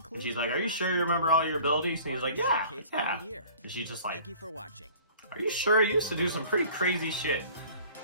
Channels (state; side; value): inverted; both; correlation -0.48